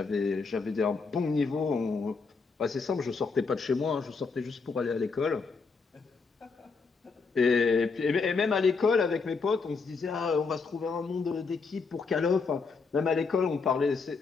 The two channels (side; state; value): right; quieter; 4.6 dB